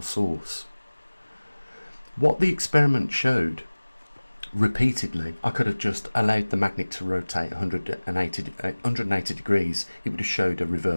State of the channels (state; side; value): inverted; both; correlation -1.00